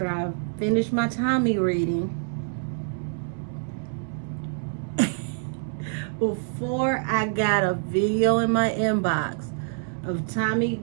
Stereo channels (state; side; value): silent; left; digital silence